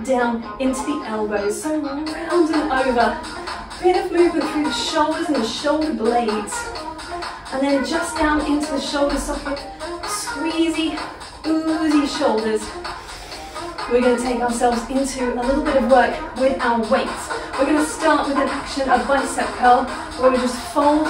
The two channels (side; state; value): both; identical; correlation 1.00